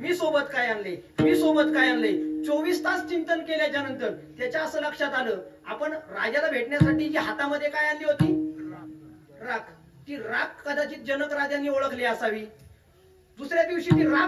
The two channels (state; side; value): identical; both; correlation 1.00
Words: सोबत काय आणले, मी सोबत काय आणले. 24 तास चिंतन केल्याच्या नंतर त्याच्या असं लक्षात आलं, आपण राजाला भेटण्यासाठी जी हातामध्ये काय आणली होती, राख. ती राख कदाचित जनक राजांनी ओळखली असावी. दुसऱ्या दिवशी ती